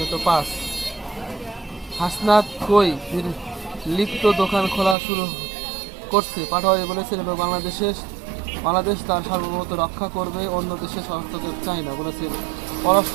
5। হাসনাত কই লিপ্ত দোকান খোলা শুরু করছে পাটোয়ারি বলেছেন, এবং বাংলাদেশ তার সার্বভৌমত্ব রক্ষা করবে, অন্য দেশের হস্তক্ষেপ চায় না বলেছেন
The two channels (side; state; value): left; drops out; at 5.0 s